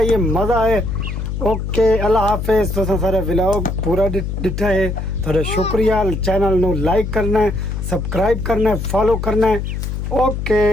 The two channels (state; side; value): noise; left; hum, 4 dB below the sound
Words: मजा है ओके अल्लाह हाफिज तो सारे व्लॉग पूरा डिठा है थोड़ा शुक्रिया चैनल नु लाइक करना है सब्सक्राइब करना है फॉलो करना है ओके